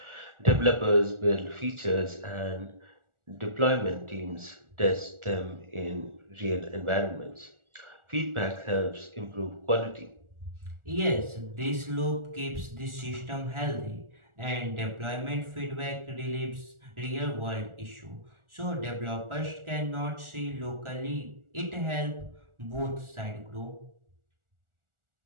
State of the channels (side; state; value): left; late; 1.4 ms